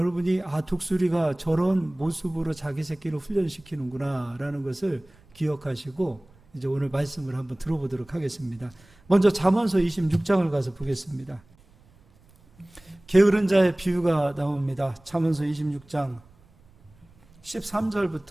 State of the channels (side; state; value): right; noise; rumble, 29 dB below the sound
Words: 독수리가 저런 모습으로 자기 새끼를 훈련시키는구나 라는 것을 기억하시고 이제 오늘 말씀을 한번 들어보도록 하겠습니다. 먼저 잠언서 26장을 가서 보겠습니다. 게으른 자의 비유가 나옵니다. 잠언서 26장